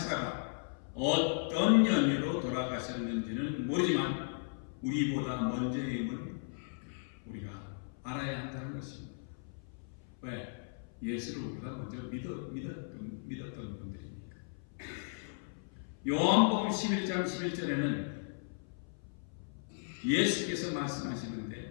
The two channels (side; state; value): right; silent; 54 dB below the other